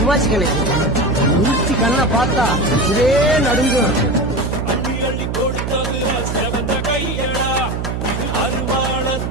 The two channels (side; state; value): right; noise; hum, 3 dB below the sound